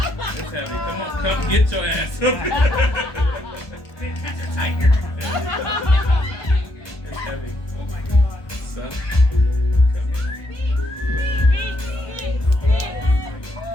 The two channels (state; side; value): late; right; 1.1 ms